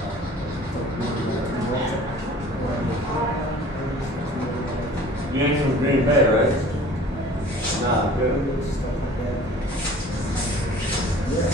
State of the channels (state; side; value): normal; both; correlation 0.47